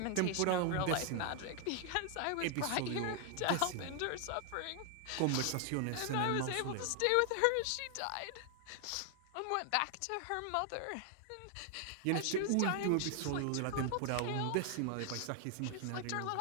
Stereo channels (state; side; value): different; both; correlation 0.00